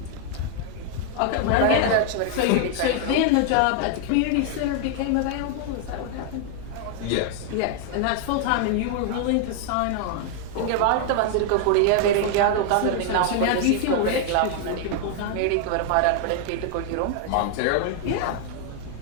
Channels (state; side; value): different; both; correlation 0.00